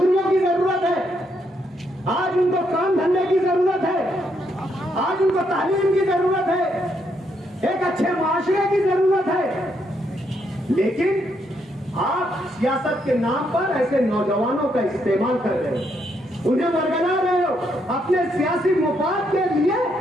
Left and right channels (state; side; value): normal; both; correlation 0.76